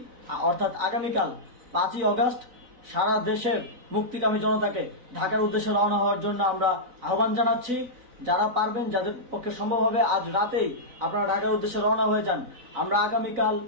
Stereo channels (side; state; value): left; late; 4.0 ms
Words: অর্থাৎ আগামীকাল 5ই অগস্ট সারা দেশের মুক্তিকামী জনতাকে ঢাকার উদ্দেশ্যে রওনা হওয়ার জন্য আমরা আহ্বান জানাচ্ছি। যারা পারবেন, যাদের পক্ষে সম্ভব হবে, আজ রাতেই আপনারা ঢাকার উদ্দেশ্যে রওনা হয়ে যান। আমরা আগামীকাল